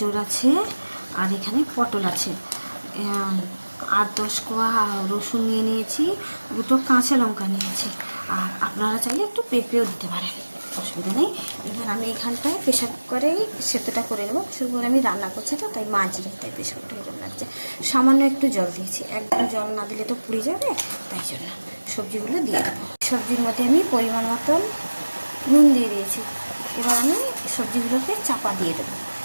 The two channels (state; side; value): inverted; both; correlation -1.00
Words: আছে, আর এখানে পটল আছে। 8-10 কোয়া রসুন নিয়ে নিয়েছি, দুটো কাঁচা লঙ্কা নিয়েছি, আর আপনারা চাইলে একটু পেঁপেও দিতে পারেন, অসুবিধা নেই। এবার আমি এখানটায় প্রেশার কুকারেই সেদ্ধটা করে নেবো। প্রেশার কুকারে আমি রান্না করছি তো, তাই মাঝিয়ে তাই প্রেশার কুকারে এরকম লাগছে। সামান্য একটু জল দিয়েছি, একদম জল না দিলে তো পুড়ে যাবে, তাই জন্য সবজিগুলো দিয়ে দেবো। সবজির মধ্যে আমি পরিমাণ মতন নুন দিয়ে দিয়েছি। এবার আমি সবজিগুলোকে চাপা দিয়ে দেবো